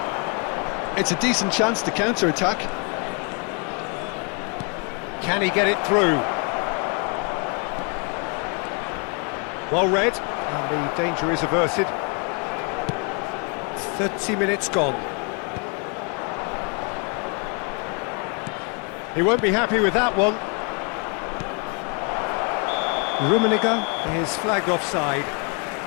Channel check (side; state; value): right; quieter; 34.9 dB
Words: It's a decent chance to counter-attack. Can he get it through? Well read, and the danger is averted. 30 minutes gone. He won't be happy with that one. Rummenigge is flagged offside.